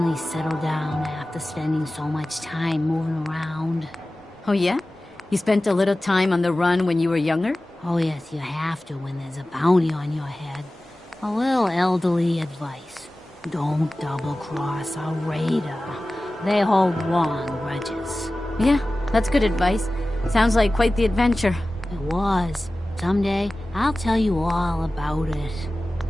settle down after spending so much time moving around. Oh, yeah? You spent a little time on the run when you were younger? Oh, yes, you have to when there's a bounty on your head. A little elderly advice. Don't double-cross a raider. They hold long grudges. Yeah, that's good advice. Sounds like quite the adventure. It was. Someday, I'll tell you all about it.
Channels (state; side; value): normal; both; correlation 0.96